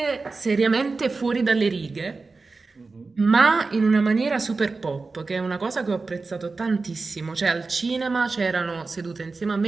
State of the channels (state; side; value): quieter; left; 3.9 dB